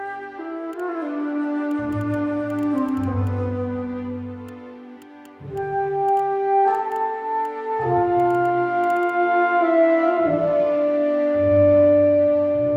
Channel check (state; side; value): identical; both; correlation 1.00